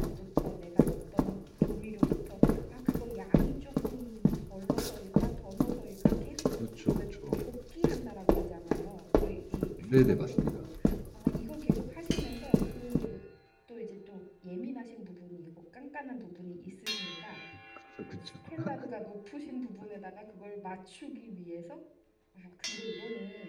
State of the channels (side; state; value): both; identical; correlation 1.00